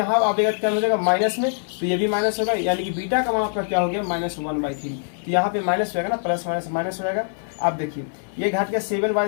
आएगा क्या हो जाएगा माइनस में, तो ये भी माइनस होगा, यानी कि बीटा का मान आपका क्या हो गया -1/3। तो यहाँ पे माइनस हो जाएगा ना, प्लस माइनस माइनस हो जाएगा। आप देखिए ये घट के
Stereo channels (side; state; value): right; silent; digital silence